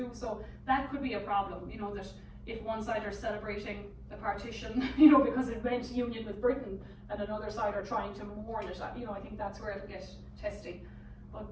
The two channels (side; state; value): both; identical; correlation 1.00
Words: So that could be a problem, you know, that if one side are celebrating the partition, you know, because it meant union with Britain, and another side are trying to mourn it, you know, I think that's where it'll get testy. But,